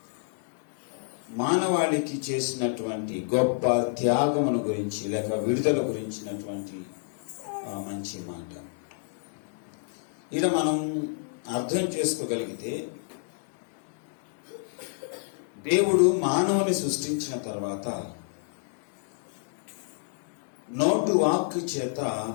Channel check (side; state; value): right; silent; digital silence